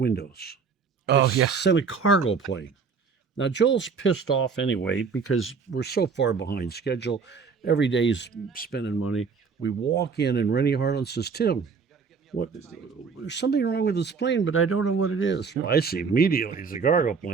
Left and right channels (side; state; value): left; quieter; 5.4 dB